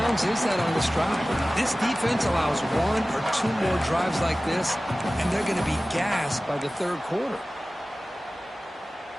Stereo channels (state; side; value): normal; both; correlation 0.97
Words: is that on this drive? This defense allows one or two more drives like this, and they're going to be gassed by the third quarter.